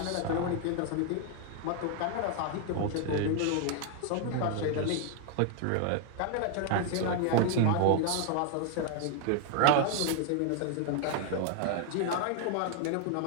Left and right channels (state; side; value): different; both; correlation 0.00